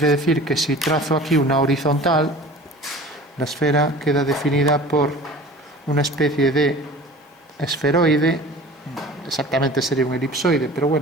decir que si trazo aquí una horizontal, la esfera queda definida por una especie de esferoide, exactamente sería un elipsoide, pero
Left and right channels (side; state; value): both; normal; correlation 0.42